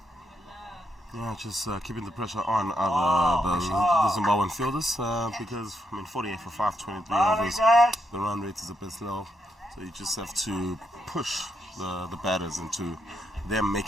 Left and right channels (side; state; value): both; normal; correlation 0.80